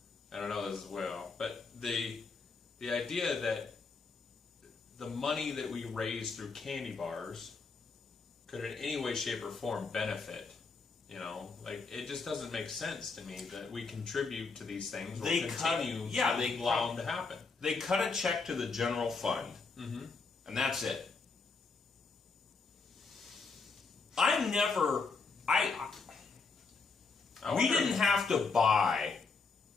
I don't know this as well, but the idea that the money that we raise through candy bars could in any way, shape, or form benefit, it just doesn't make sense to me that we contribute to these things or continue to allow them to happen. They cut a check to the general fund, and that's it. We didn't have to buy,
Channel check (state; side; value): quieter; right; 4.5 dB